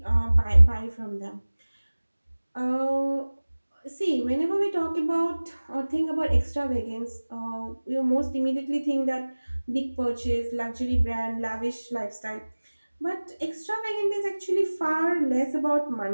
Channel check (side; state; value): both; inverted; correlation -1.00